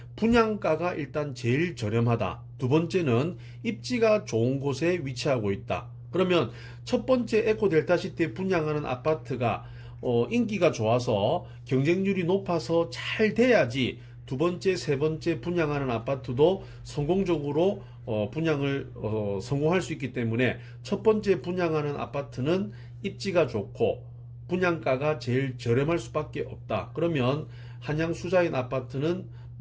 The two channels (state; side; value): identical; both; correlation 1.00